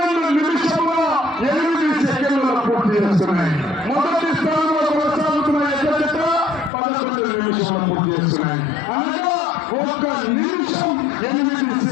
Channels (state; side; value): drops out; right; at 6.7 s